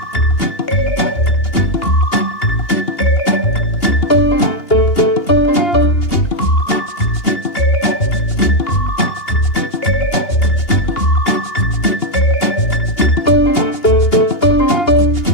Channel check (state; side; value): late; right; 2.8 ms